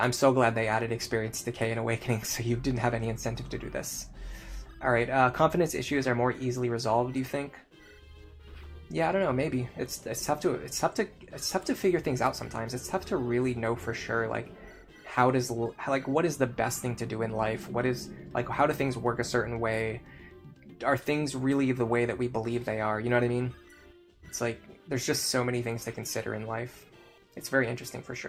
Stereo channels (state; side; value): identical; both; correlation 1.00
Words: so glad they added experience decay and awakening, so you didn't have any incentive to do this. All right, confidence issues are more easily resolved, do you think? Yeah, I don't know. Maybe it's tough to figure things out sometimes. It's tough to really know for sure, like, what is the best thing to do in life? What is, like, how do things work a certain way? Are things really the way that we believe they are? You know what I mean? It's like, there's just so many things to consider in life. It's very interesting for